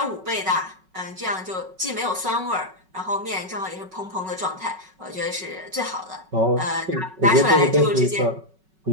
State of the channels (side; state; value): left; late; 5.3 ms